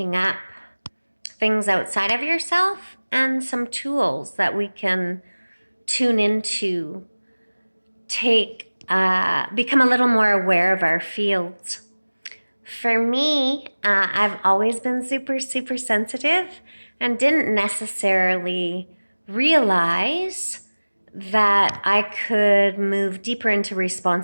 up things outside of yourself and some tools that we can tune into, become a little more aware of our fields. For me, I've always been super, super sensitive and didn't necessarily realize that I could move deeper into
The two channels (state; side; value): inverted; both; correlation -1.00